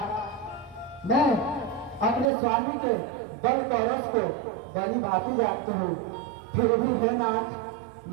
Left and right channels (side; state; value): left; drops out; at 2.3 s